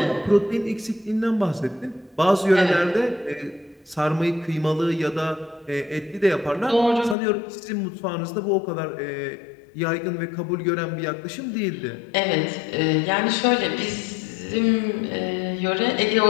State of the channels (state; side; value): drops out; right; at 7.2 s